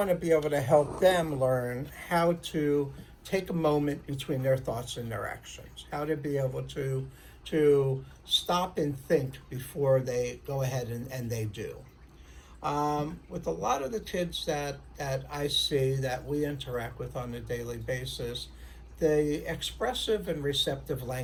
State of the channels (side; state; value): both; identical; correlation 1.00